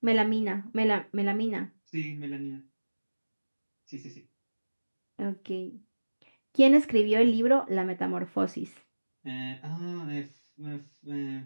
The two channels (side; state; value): both; inverted; correlation -1.00